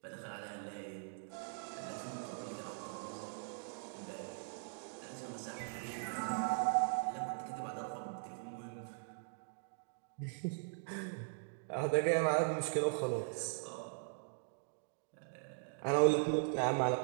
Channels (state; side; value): silent; left; digital silence